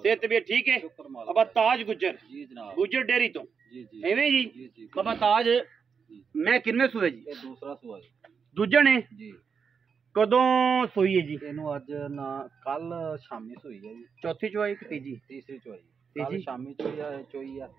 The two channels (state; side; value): quieter; left; 6.1 dB